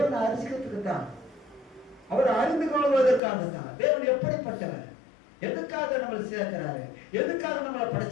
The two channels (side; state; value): right; drops out; at 3.2 s